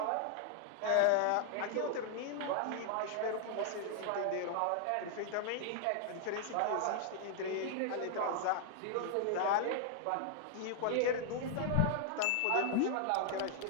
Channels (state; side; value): different; both; correlation 0.00